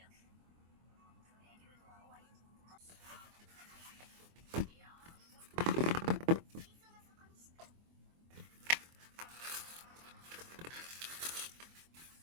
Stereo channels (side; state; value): left; late; 24 ms